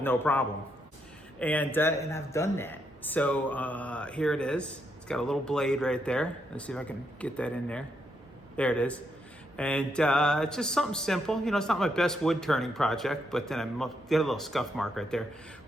no problem. And I've done that. So here it is. It's got a little blade right there. Let's see if I can get that in there. There it is. And it's just something simple. You know, it's not my best wood turning project, but then I get a little scuff mark right there.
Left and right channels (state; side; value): normal; both; correlation 0.78